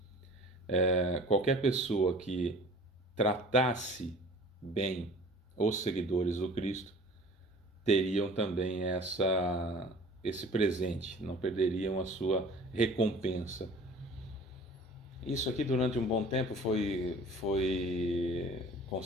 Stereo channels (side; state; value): both; normal; correlation 0.46